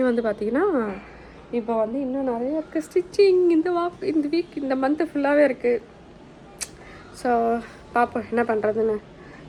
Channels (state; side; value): identical; both; correlation 1.00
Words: வந்து பார்த்திங்கன்னா இப்போ வந்து இன்னும் நிறைய இருக்குது ஸ்டிச்சிங். இந்த வீக் இந்த மந்த்து ஃபுல்லாகவே இருக்குது. ஸோ பார்ப்போம் என்ன பண்ணுறதுன்னு.